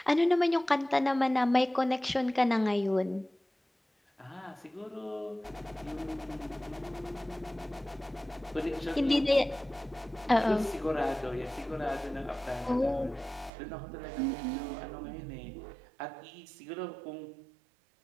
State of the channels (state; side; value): drops out; left; at 13.5 s